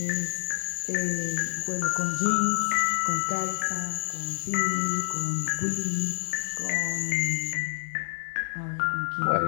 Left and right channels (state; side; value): silent; right; digital silence